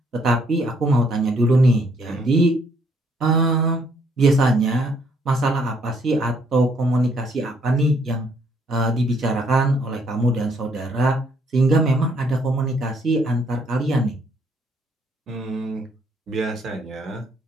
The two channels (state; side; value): normal; both; correlation 0.68